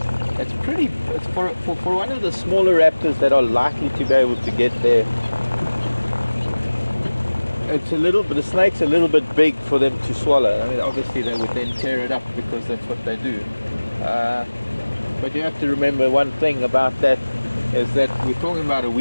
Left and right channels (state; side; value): inverted; both; correlation -1.00